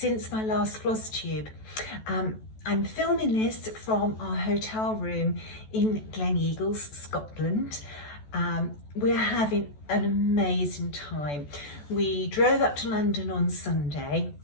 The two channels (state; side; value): late; right; 14 ms